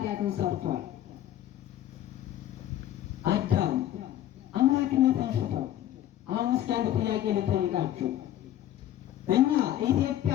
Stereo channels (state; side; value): quieter; right; 12.4 dB